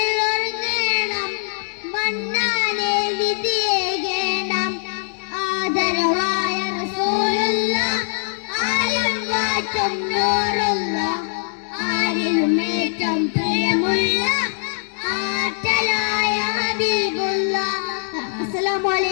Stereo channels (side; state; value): right; silent; digital silence